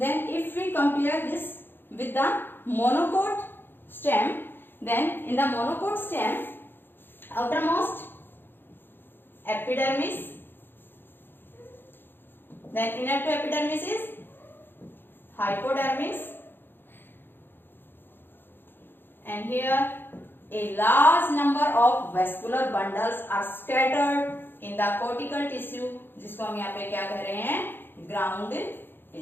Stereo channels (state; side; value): late; right; 0.10 ms